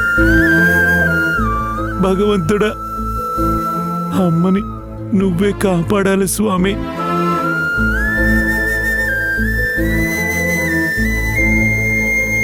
భగవంతుడా, అమ్మని నువ్వే కాపాడాలి స్వామి.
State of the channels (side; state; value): both; identical; correlation 1.00